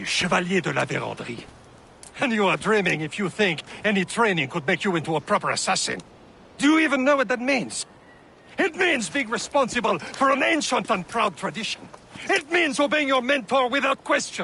Chevalier de la Vérendrye. And you are dreaming if you think any training could make you into a proper assassin. Do you even know what that means? It means being responsible for an ancient and proud tradition. It means obeying your mentor without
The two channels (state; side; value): identical; both; correlation 1.00